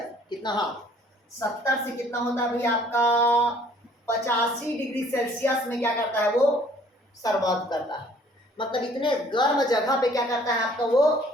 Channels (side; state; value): both; normal; correlation 0.57